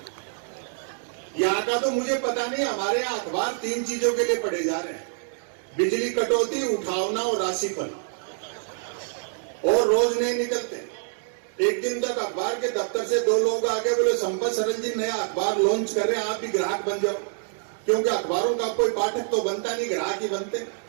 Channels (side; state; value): left; silent; digital silence